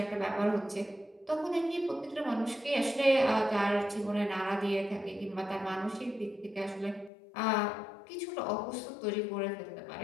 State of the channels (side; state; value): right; drops out; at 7.1 s